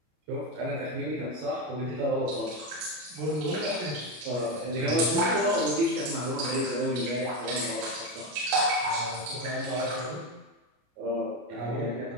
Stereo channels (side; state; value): left; late; 33 ms